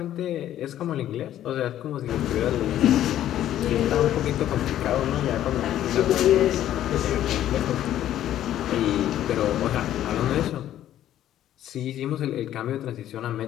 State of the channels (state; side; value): quieter; right; 12.0 dB